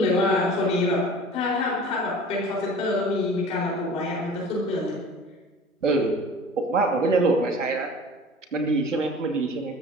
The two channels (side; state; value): both; normal; correlation 0.42